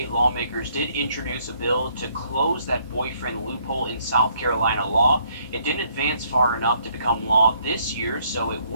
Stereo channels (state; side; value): inverted; both; correlation -0.68